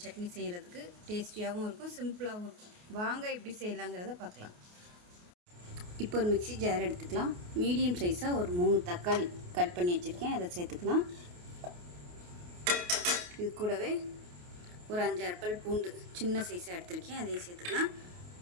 சட்னி செய்கிறதுக்கு. டேஸ்டியாகவும் இருக்கும், சிம்பிளாகவும் இருக்கும். வாங்க எப்படி செய்யலாங்கிறத பார்க்கலாம். இப்போ ஒரு மிக்ஸி ஜார் எடுத்துக்கலாம். மீடியம் சைஸாக ஒரு 3 தக்காளி கட் பண்ணி வச்சுருக்கேன், அதை சேர்த்துக்கலாம். இது கூடவே ஒரு 5-6 பல் பூண்டு சின்ன சைஸாக எடுத்திருக்கேன், அதையும் சேர்த்துக்கலாம்.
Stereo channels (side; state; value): left; late; 28 ms